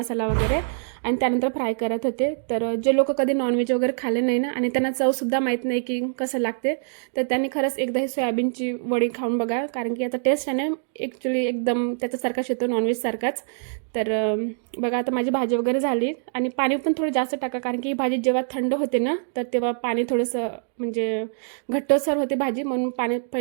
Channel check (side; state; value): left; silent; digital silence